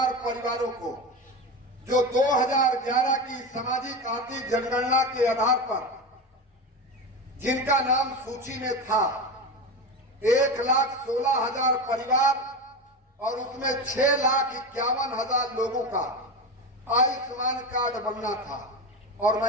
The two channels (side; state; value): both; normal; correlation 0.22